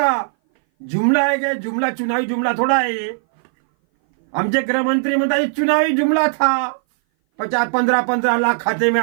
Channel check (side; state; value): left; silent; 60 dB below the other